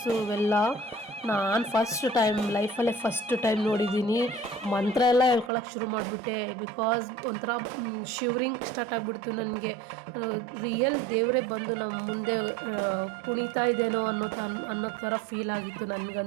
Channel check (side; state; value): left; drops out; at 5.5 s